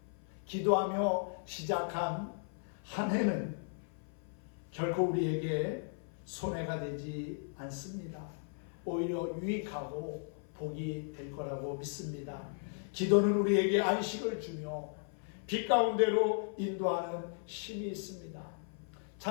기도하며 시작한 한 해는 결코 우리에게 손해가 되지 않습니다. 오히려 유익하고 복이 될 거라고 믿습니다. 기도는 우리에게 안식을 주며 빛 가운데로 인도하는 힘이 있습니다.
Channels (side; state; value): right; silent; 54 dB below the other